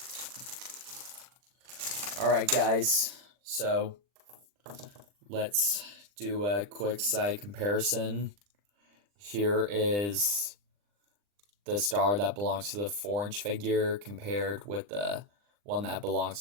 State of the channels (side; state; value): left; late; 39 ms